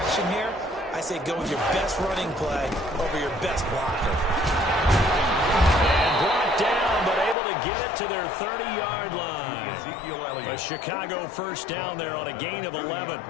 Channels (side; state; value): right; drops out; at 7.4 s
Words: here. I say go with your best running play over your best blocker. And brought down, but able to get it to their 30-yard line. Ezekiel Elliott. A Chicago first down there on a gain of 11.